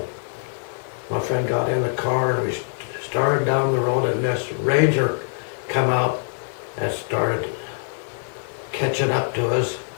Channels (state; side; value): silent; right; digital silence